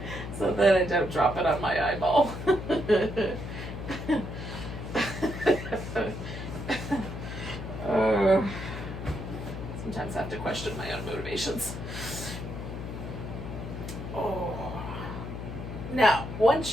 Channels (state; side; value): noise; left; hum, 8 dB below the sound